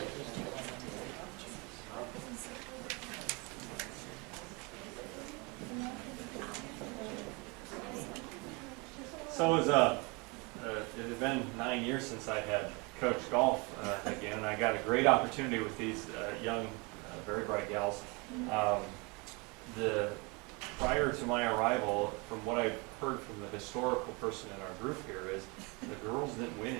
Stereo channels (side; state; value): left; quieter; 28.9 dB